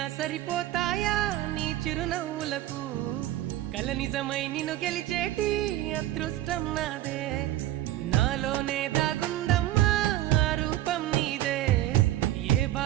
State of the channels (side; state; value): left; quieter; 14.4 dB